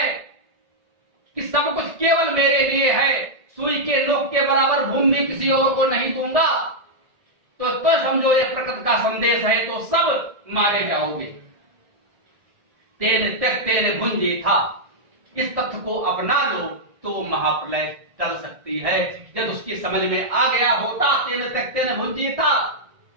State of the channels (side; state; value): left; late; 1.6 ms